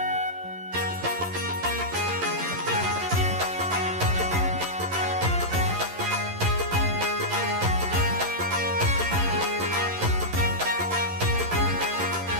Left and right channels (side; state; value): left; late; 11 ms